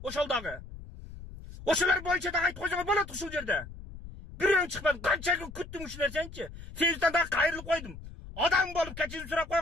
Ошол дагы. Ошолор боюнча да айтып койсоңор болот ушул жерде. Бирөөң чыкпады, канча күн күттүм ушул нерсени. Фейсбуктан да кайрылып койдум. Адам болуп кечирим сурап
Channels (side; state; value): left; noise; rumble, 14 dB below the sound